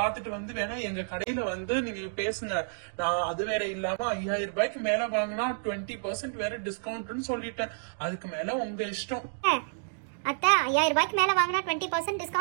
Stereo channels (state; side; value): silent; left; digital silence